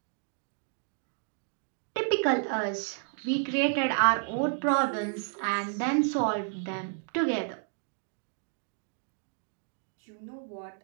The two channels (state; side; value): silent; left; digital silence